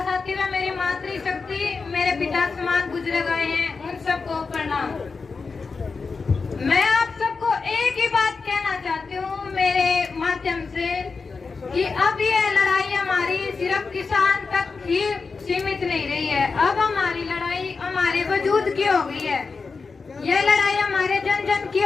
साथी व मेरी मातृशक्ति मेरे पिता समान गुजरे गए हैं, उन सबको प्रणाम। मैं आप सबको एक ही बात कहना चाहती हूँ मेरे माध्यम से कि अब ये लड़ाई हमारी सिर्फ किसान तक ही सीमित नहीं रही है, अब हमारी लड़ाई हमारे वजूद की हो गई है। ये लड़ाई हमारे जन जन की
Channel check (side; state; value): right; quieter; 4.6 dB